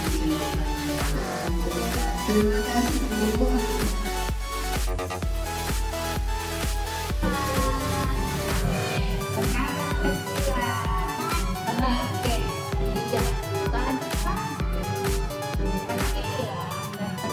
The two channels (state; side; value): identical; both; correlation 1.00